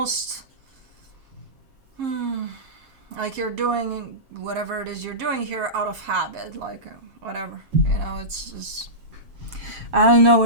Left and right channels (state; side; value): late; left; 7.4 ms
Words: like you're doing whatever it is you're doing here out of habit. Like whatever, you know, it's just, I don't know